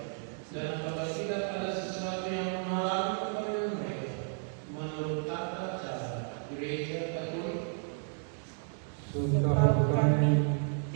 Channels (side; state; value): left; silent; 56 dB below the other